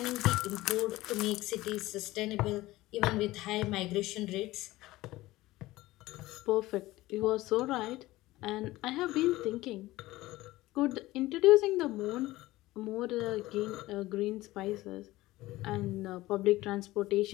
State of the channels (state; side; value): quieter; right; 17.9 dB